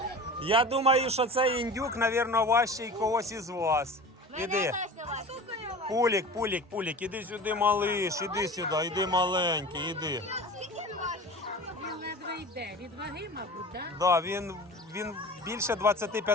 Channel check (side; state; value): both; normal; correlation 0.36